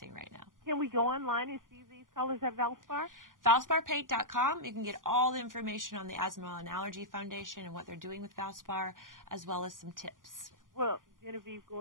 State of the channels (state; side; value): late; left; 0.89 ms